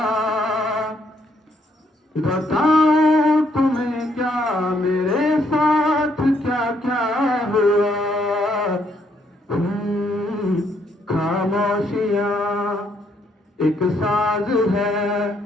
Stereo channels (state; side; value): normal; both; correlation 0.72